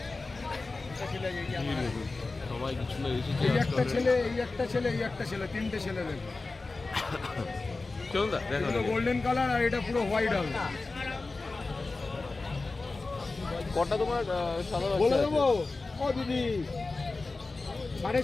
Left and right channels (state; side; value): quieter; right; 3.6 dB